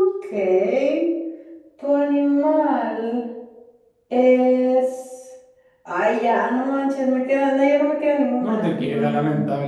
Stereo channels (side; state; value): both; identical; correlation 1.00